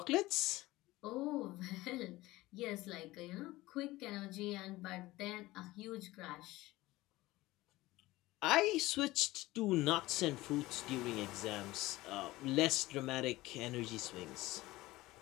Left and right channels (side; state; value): right; quieter; 18.6 dB